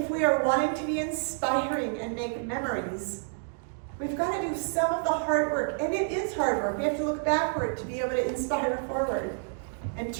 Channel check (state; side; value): silent; left; digital silence